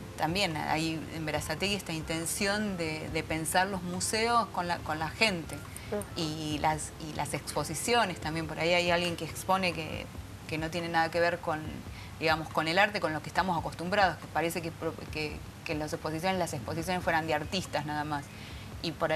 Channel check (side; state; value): both; identical; correlation 1.00